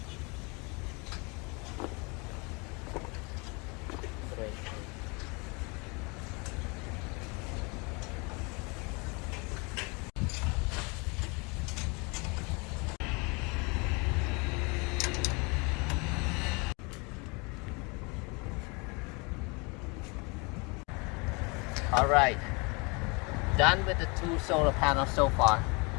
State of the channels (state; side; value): quieter; right; 29.7 dB